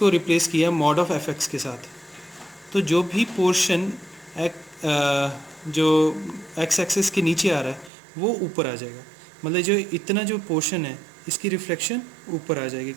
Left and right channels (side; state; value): left; drops out; at 7.9 s